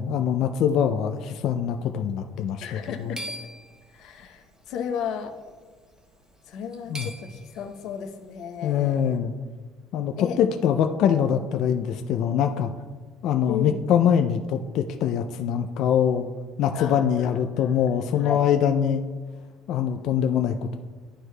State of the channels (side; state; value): right; quieter; 8.1 dB